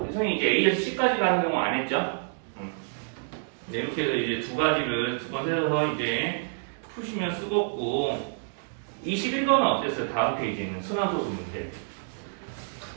이제 A에서 C까지 가는 경우 안 했죠? 이렇게 해서 이제 2가지를 2번 세셔서 이제 푸시면 쓰겠고, 21번은 어땠어요? 다음 페이지에는 순환소수 문제.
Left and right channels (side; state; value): left; silent; digital silence